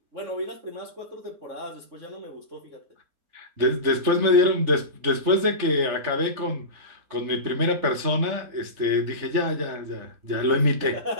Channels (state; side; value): late; left; 3.4 ms